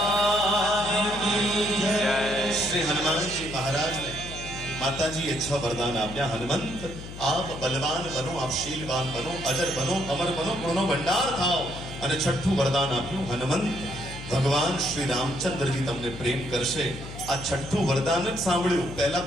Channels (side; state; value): left; noise; hum, 12 dB below the sound